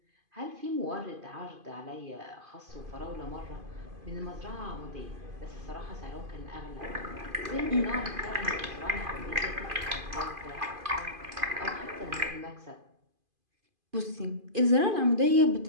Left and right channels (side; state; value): left; late; 2.5 ms